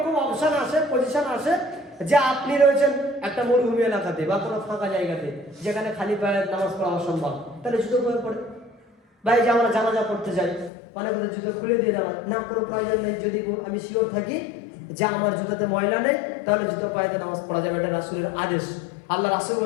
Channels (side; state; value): right; drops out; at 10.7 s